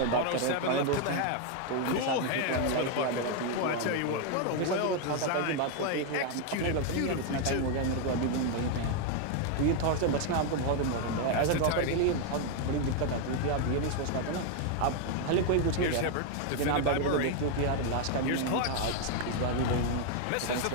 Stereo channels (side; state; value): both; different; correlation 0.01